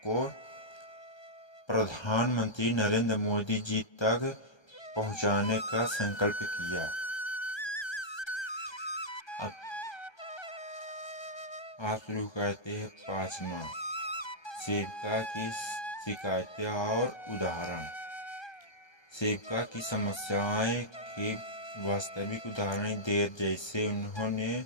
को प्रधानमंत्री नरेंद्र मोदी जी तक पहुंचाने का संकल्प किया। आप शुरू करते हैं 5वां, सेविका की शिकायतें और उदाहरण। सेविका की समस्याएं के वास्तविक उदाहरण देर जैसे उन्होंने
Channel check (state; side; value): late; right; 1.3 ms